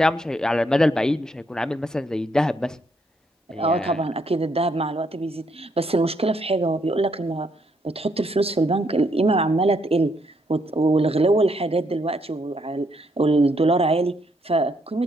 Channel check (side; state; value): both; normal; correlation 0.74